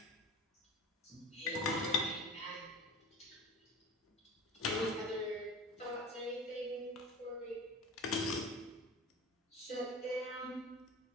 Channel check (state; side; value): normal; both; correlation 0.34